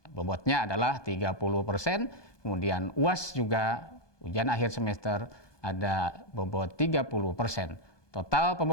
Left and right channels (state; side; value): late; right; 1.2 ms